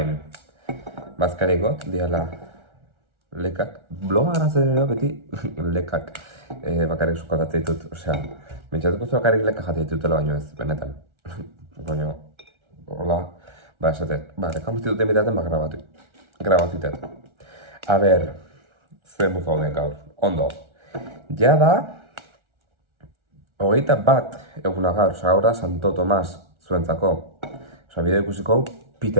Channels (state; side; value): late; left; 1.4 ms